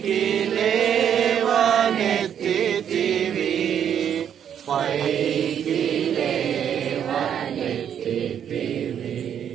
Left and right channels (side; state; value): left; quieter; 9.0 dB